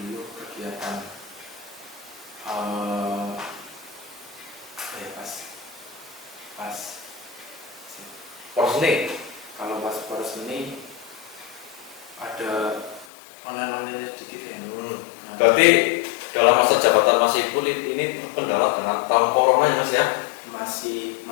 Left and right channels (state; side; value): drops out; right; at 13.1 s